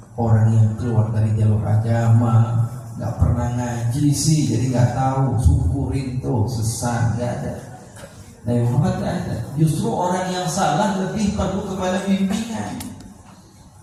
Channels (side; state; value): both; identical; correlation 1.00